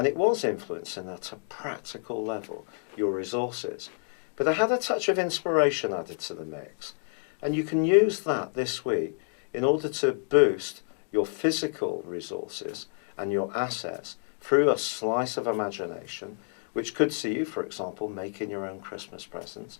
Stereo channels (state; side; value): silent; right; 59 dB below the other